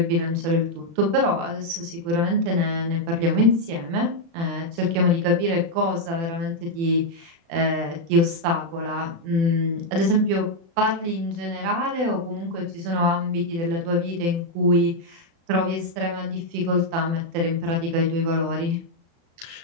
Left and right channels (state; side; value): late; left; 36 ms